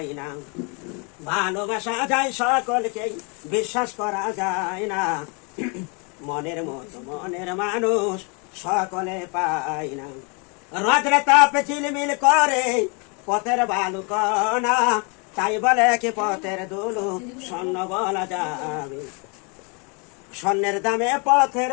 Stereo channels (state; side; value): quieter; right; 33.6 dB